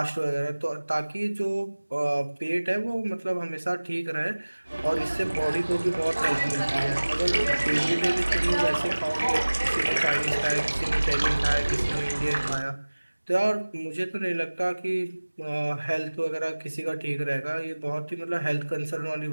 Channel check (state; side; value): inverted; both; correlation -1.00